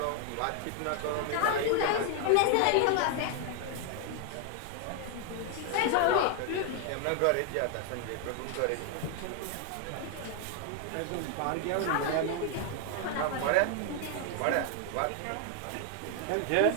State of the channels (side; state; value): both; different; correlation 0.00